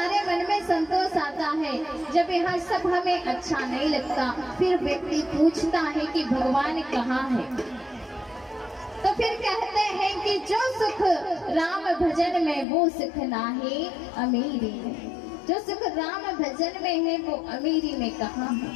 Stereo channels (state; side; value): drops out; right; at 12.7 s